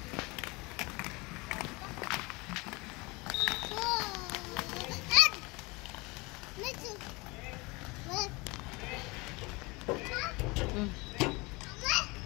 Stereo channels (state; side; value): quieter; right; 25.5 dB